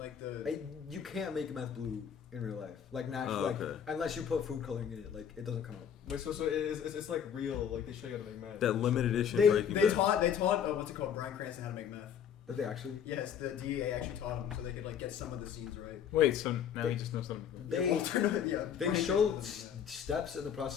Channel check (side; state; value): right; quieter; 8.4 dB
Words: the. You can't make meth blue in real life, like naturally, Oh, like okay. unless you put food coloring in it, like it doesn't come out. Wait, so it's like real. Like they show you how to make meth. That limited edition They Breaking they Bad. taught what's it called, Bryan Cranston, how to make meth. Did they actually? Yes, the DEA actually taught him so they could like get some of the scenes right. Wait, so now They- he just knows something. They yeah. they Bryan showed Cranston made steps in the